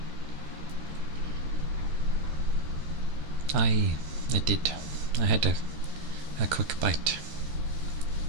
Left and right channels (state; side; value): late; left; 13 ms